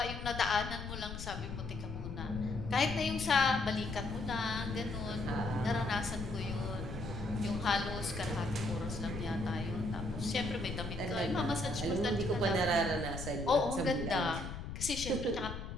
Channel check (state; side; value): noise; left; rumble, 7 dB below the sound